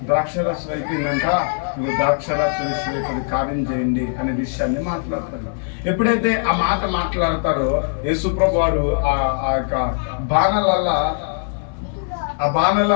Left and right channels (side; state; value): right; silent; digital silence